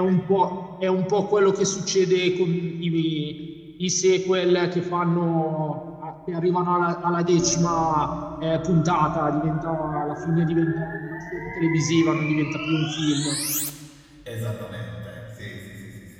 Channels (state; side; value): identical; both; correlation 1.00